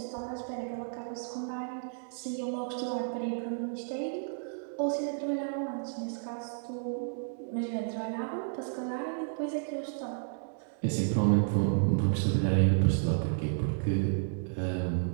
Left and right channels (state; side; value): silent; left; digital silence